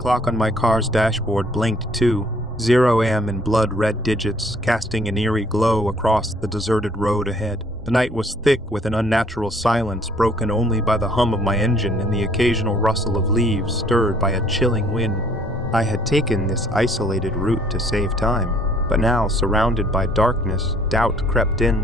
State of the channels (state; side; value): normal; both; correlation 0.60